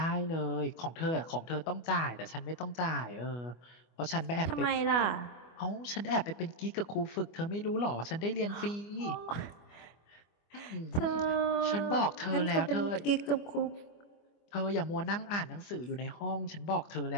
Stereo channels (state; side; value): late; right; 25 ms